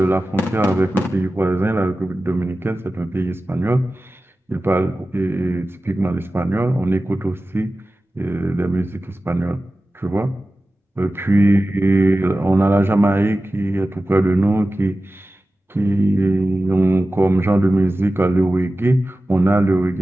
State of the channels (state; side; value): normal; both; correlation 0.95